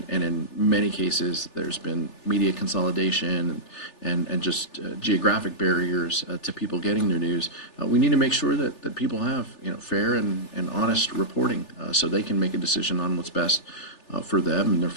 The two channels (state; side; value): late; right; 3.4 ms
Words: in many cases, there's been media consolidation and just geographic barriers to people getting their news. We need to make sure that people have, fair and honest reporting so they can make a decision on what's best for them and their